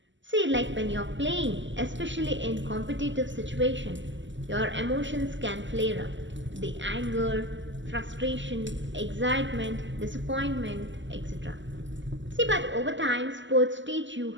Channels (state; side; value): late; left; 0.54 ms